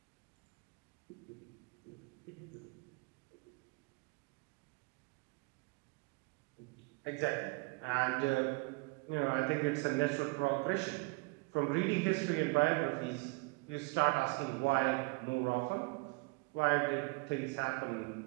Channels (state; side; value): quieter; left; 28.1 dB